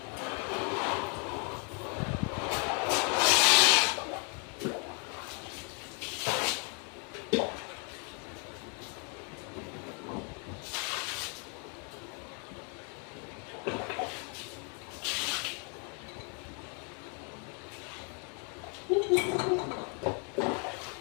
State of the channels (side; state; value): right; quieter; 37.7 dB